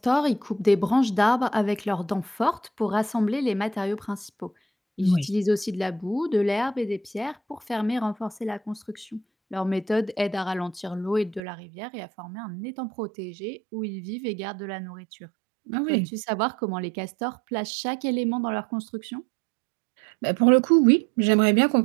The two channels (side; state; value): left; drops out; at 11.4 s